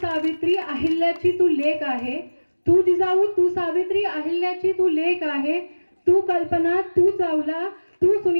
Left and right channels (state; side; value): inverted; both; correlation -1.00